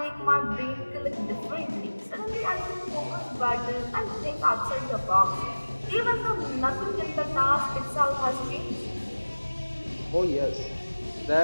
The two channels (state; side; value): inverted; both; correlation -1.00